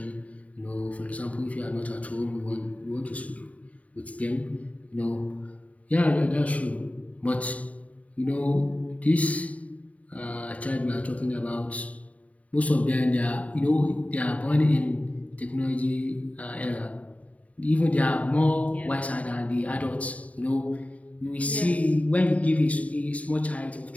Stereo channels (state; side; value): late; right; 0.068 ms